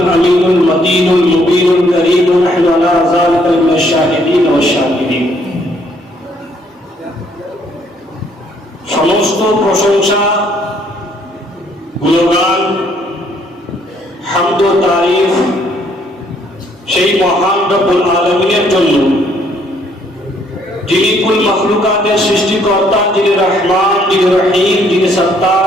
الأمين المتين المبين الكريم ونحن على ذلك من الشاهدين والشاكرين. সমস্ত প্রশংসা, গুণগান, হামদ ও তারিফ সেই মহান রব্বুল আলামিনের জন্য, যিনি কুল মাখলুকাতের সৃষ্টিকর্তা, যিনি রহমান, যিনি রহিম, যিনি সত্তার,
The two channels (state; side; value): normal; both; correlation 0.67